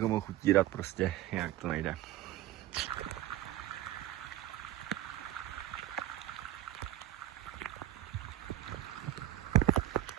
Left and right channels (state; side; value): quieter; left; 13.7 dB